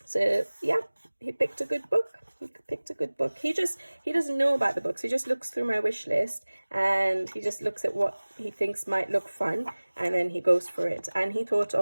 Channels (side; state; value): both; inverted; correlation -1.00